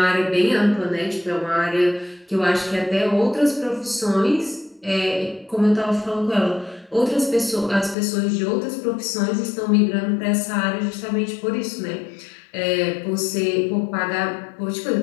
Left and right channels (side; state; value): right; drops out; at 8.0 s